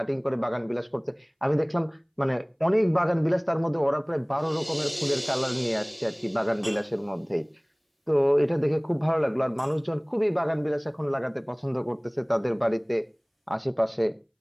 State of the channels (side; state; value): both; identical; correlation 1.00